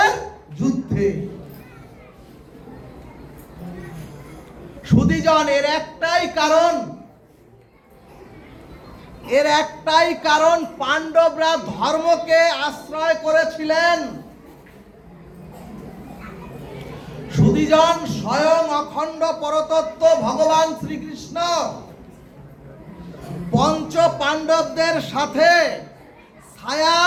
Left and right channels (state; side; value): identical; both; correlation 1.00